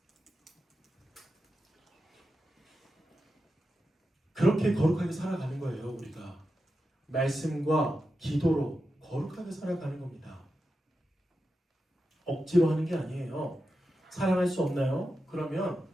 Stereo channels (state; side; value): normal; both; correlation 0.90